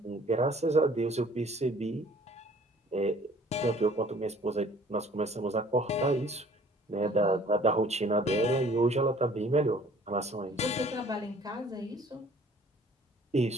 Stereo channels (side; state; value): both; normal; correlation 0.54